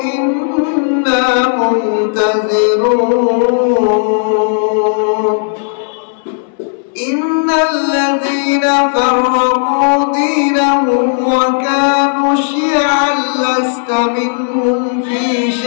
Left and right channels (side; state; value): right; silent; digital silence